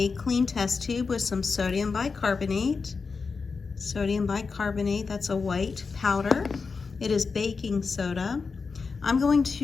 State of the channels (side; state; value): right; quieter; 4.8 dB